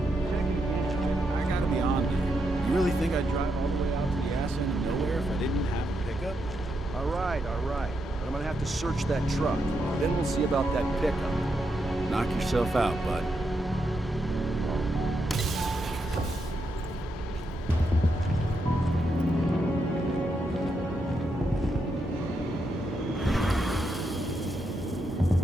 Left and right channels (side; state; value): both; normal; correlation 0.82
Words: I gotta be on there. You really think I'd drive all the way out to the ass end of nowhere if I didn't have a pickup? All right. But I'm gonna have to search that truck. Then we'll see about that pickup. Knock yourself out, bud.